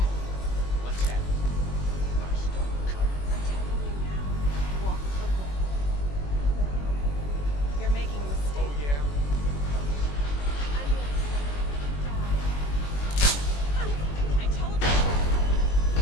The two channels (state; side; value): late; right; 21 ms